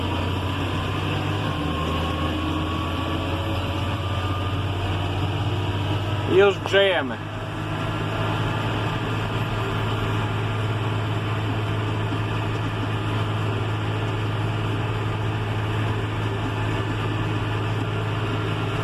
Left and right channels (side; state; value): both; identical; correlation 1.00